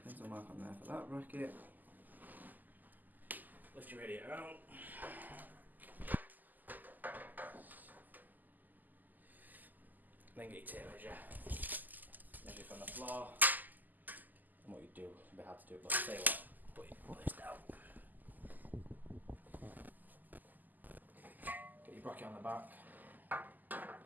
Pencil mark on there for that bracket. Lift your radiator out. Then get your tape measure. Measure from the floor. And what you do, it's a bit hard to do it, but I'll tell you what, put this down. Get your bracket on the back.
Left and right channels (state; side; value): late; left; 0.084 ms